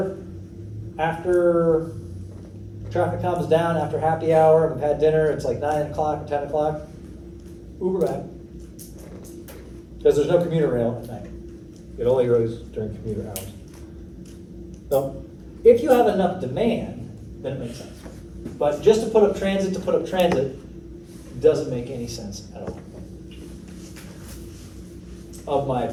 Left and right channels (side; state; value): both; identical; correlation 1.00